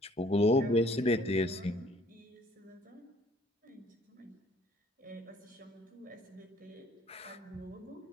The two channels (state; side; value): normal; both; correlation 0.59